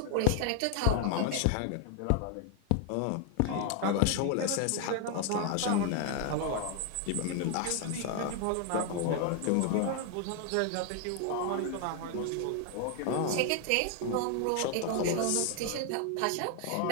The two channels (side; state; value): both; different; correlation 0.00